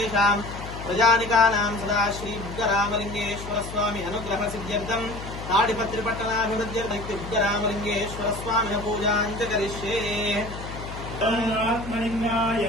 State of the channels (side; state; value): left; noise; hum, 10 dB below the sound